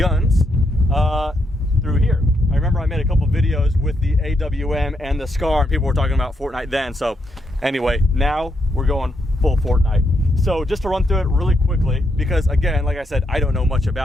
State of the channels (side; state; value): both; normal; correlation 0.79